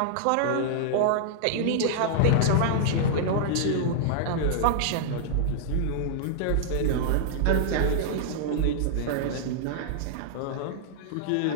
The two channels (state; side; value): different; both; correlation -0.02